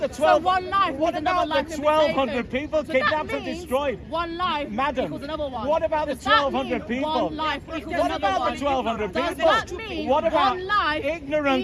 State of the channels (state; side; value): identical; both; correlation 1.00